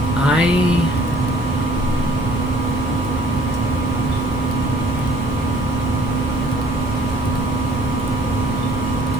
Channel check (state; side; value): normal; both; correlation 0.56